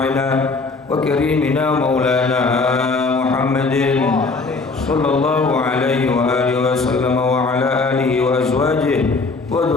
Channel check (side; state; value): right; quieter; 3.9 dB